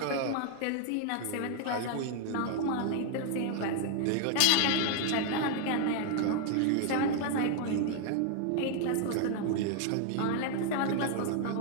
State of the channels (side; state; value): both; different; correlation 0.00